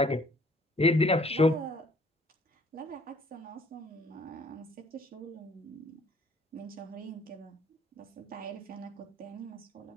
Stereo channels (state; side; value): normal; both; correlation 0.58